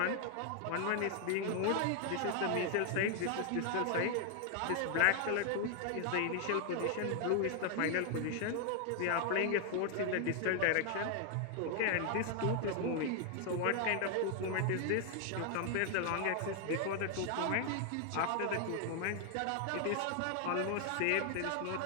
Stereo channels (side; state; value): both; different; correlation 0.00